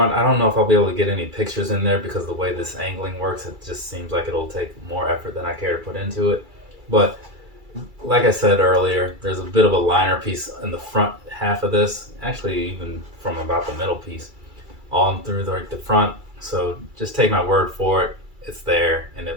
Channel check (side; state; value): left; late; 2.3 ms